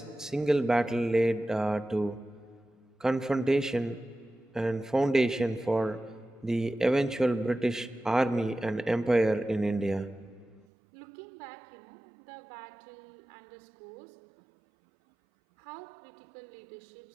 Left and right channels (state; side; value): drops out; left; at 10.7 s